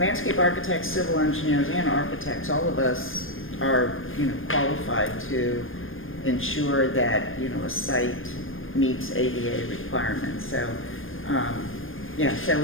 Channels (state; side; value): late; right; 0.59 ms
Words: architects, civil engineers, and architects, all of us are, you know, qualified to ensure that, you know, a site meets ADA requirements. So, so